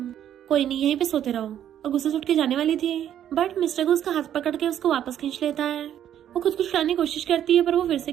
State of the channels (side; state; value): left; quieter; 10.4 dB